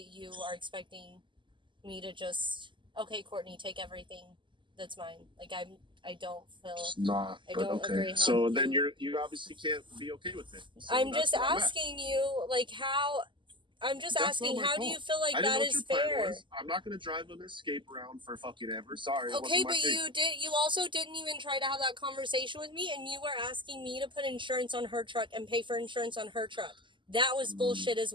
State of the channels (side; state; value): left; late; 0.24 ms